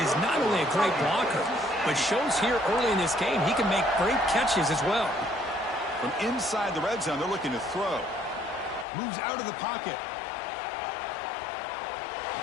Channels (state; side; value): drops out; right; at 8.8 s